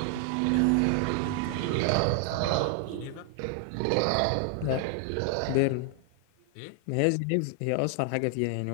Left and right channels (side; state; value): both; different; correlation 0.00